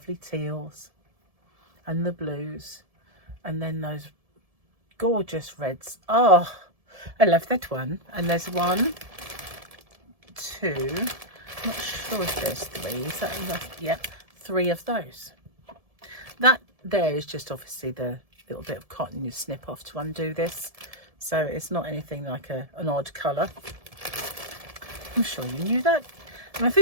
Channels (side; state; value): left; late; 1.7 ms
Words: teals and the blues, and then those gorgeous reds. Oh, I love that one. And there's 1, 2, I'm not sure if there's 3. Is that enough? Yep, 3 of those. That there is just obviously the little bit of cotton you snip off to undo this, so it's not anything like an odd colour. I'm sure you knew that. And I